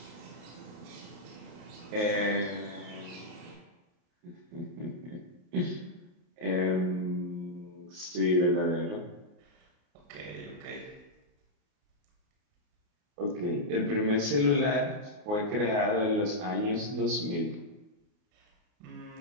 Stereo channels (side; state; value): left; late; 29 ms